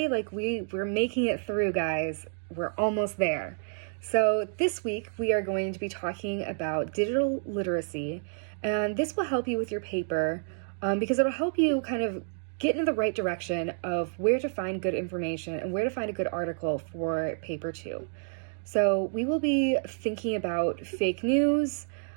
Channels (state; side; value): silent; left; digital silence